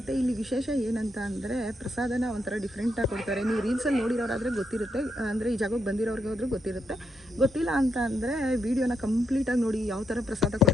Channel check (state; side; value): normal; both; correlation 0.80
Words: ಇಲ್ಲಿ ವಿಶೇಷ ಏನಂತ ಅಂದರೆ ಪ್ರಸಾದನ ಒಂಥರ ಡಿಫ್ರೆಂಟಾಗಿ ಕೊಡ್ತಾರೆ. ನೀವು ರೀಲ್ಸಲ್ಲಿ ನೋಡಿರೋರಾದರೆ ಗೊತ್ತಿರುತ್ತೆ, ಅಂದರೆ ಈ ಜಾಗಕ್ಕೆ ಬಂದಿರೋರ್ಗೆ ಹೋದ್ರೂ ಗೊತ್ತಿರುತ್ತೆ. ಗೊತ್ತಿಲ್ಲ ಅಂತ ಅಂದರೆ ವೀಡಿಯೋನ ಕಂಪ್ಲೀಟಾಗಿ ನೋಡಿ ಯಾವ ಥರ ಪ್ರಸಾದ